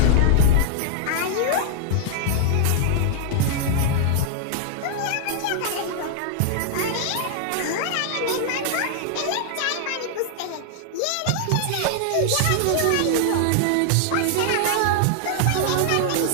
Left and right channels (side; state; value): both; different; correlation -0.01